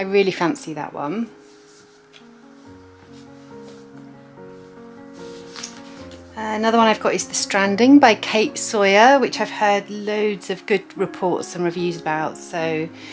really fancy that one. Another one I've got is The Stranding by Kate Sawyer, which I've heard loads of good reports and reviews about, so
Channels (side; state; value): both; identical; correlation 1.00